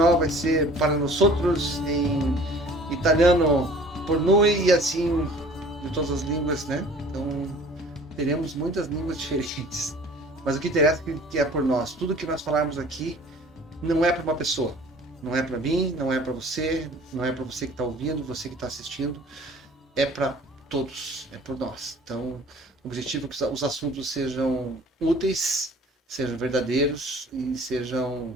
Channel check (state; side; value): normal; both; correlation 0.49